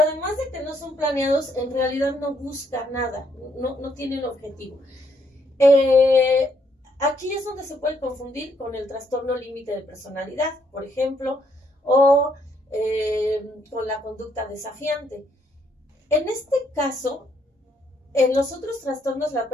de que no son planeados, en realidad no busca nada, no tienen objetivo. Aquí es donde se puede confundir con el trastorno límite de personalidad, por ejemplo, o con la conducta desafiante. En este caso, en los otros trastornos la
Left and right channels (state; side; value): normal; both; correlation 0.72